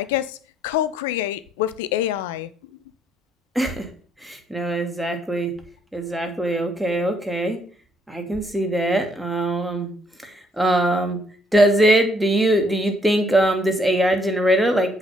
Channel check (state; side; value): normal; both; correlation 0.68